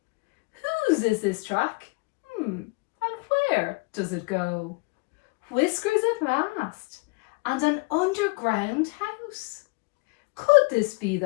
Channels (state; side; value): quieter; right; 29.6 dB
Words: Whose is this track? And where does it go? Whiskers at last, and an underground house. Could this be